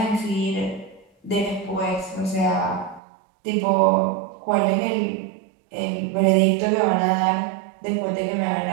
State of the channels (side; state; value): left; drops out; at 3.0 s